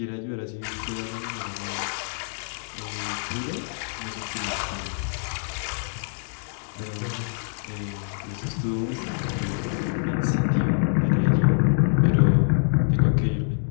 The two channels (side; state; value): right; silent; 61 dB below the other